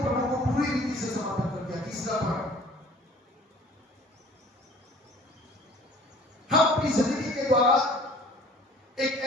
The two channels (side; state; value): both; normal; correlation 0.50